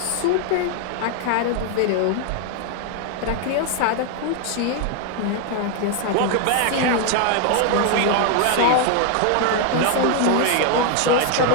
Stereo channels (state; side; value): different; both; correlation 0.01